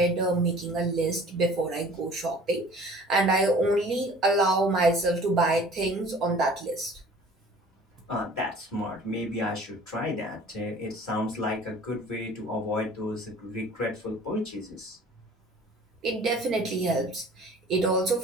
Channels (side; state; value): both; normal; correlation 0.48